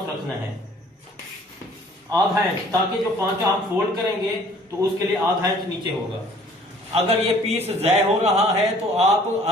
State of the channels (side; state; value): both; normal; correlation 0.55